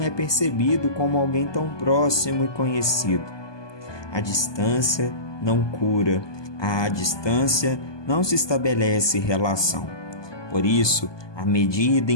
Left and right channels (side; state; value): right; late; 1.2 ms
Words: percebido como alguém tão próximo e conhecido. A distância não cura, à distância não se estabelece relação. Por isso, à medida